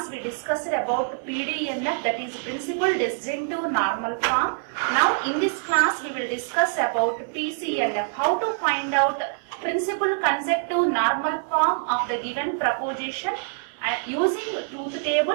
we discussed about PDNF, that is principal disjunctive normal form. Now in this class we will discuss about PCNF, how to find out principal consecutive normal form of the given proposition using truth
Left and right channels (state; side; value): silent; left; 62 dB below the other